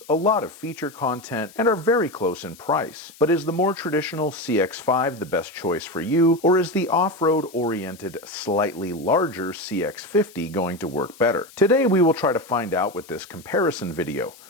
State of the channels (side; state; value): left; noise; hiss, 22 dB below the sound